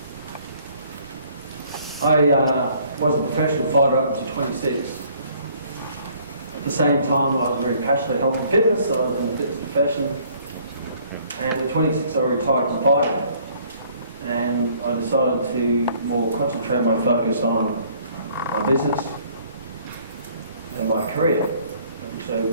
I was a professional fighter up to 26. At the same time, I was very passionate about health and fitness, so I was in the fitness profession. And at 26, I retired from fighting. And I decided to more concentrate my focus on my business and my career. So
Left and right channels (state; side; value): inverted; both; correlation -0.60